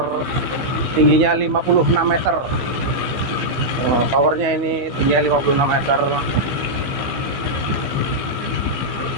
tingginya 56 meter. Towernya ini tingginya 56 meter.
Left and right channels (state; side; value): late; left; 15 ms